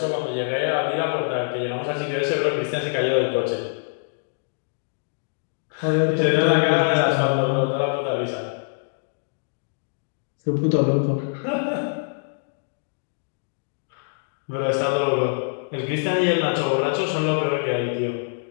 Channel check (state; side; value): silent; right; digital silence